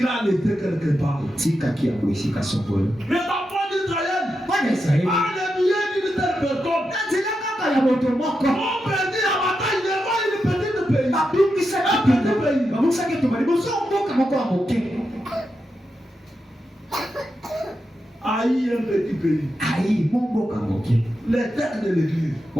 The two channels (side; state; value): both; normal; correlation 0.87